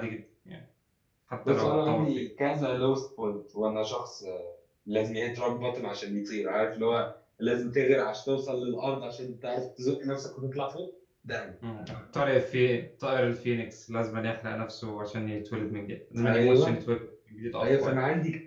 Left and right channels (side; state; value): both; identical; correlation 1.00